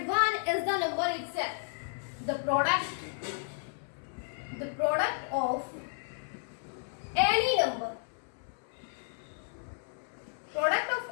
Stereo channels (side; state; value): right; silent; 56 dB below the other